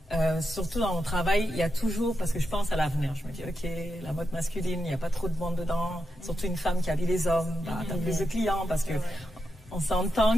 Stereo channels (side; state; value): both; normal; correlation 0.86